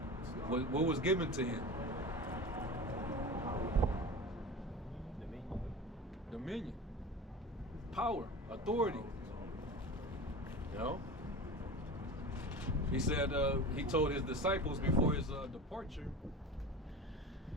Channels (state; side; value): normal; both; correlation 0.32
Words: what was given to him? Dominion. Power, authority. You know? He said, he told his disciples before his departure,